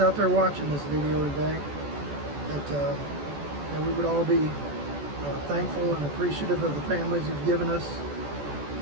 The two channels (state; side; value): late; left; 14 ms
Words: there watching this video today, that we would all be thankful and appreciative of the families you've given us,